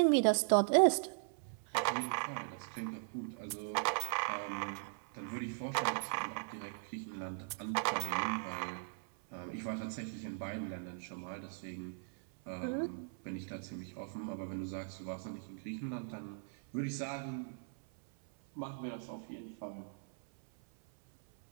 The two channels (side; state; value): left; silent; 52 dB below the other